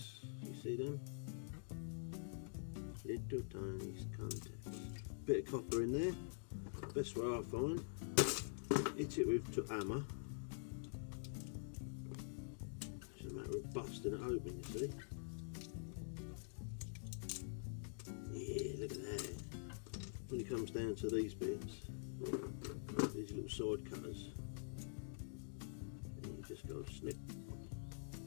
You see them? Little tiny contacts. Bit of copper in there. Best way I find. Hit it with a hammer. It's a matter of busting it open, you see. Yeah, look at that. When it comes down to these bits, these little side cutters, and you just go snip.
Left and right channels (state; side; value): silent; right; digital silence